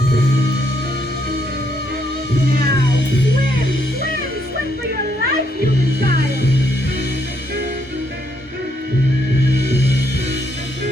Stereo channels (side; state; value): both; normal; correlation 0.74